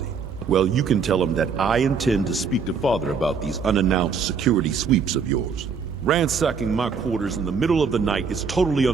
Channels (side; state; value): left; quieter; 5.7 dB